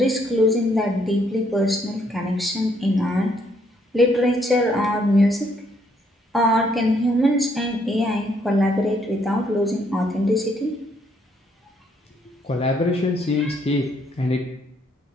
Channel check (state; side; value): normal; both; correlation 0.70